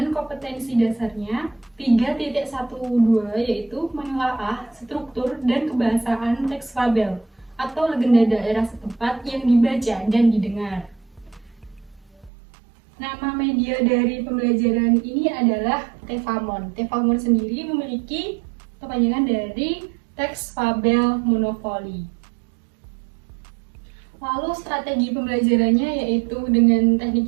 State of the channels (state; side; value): drops out; left; at 12.3 s